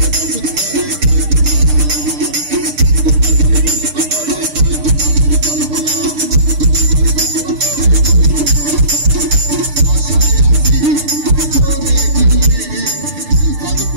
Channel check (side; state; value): left; late; 6.7 ms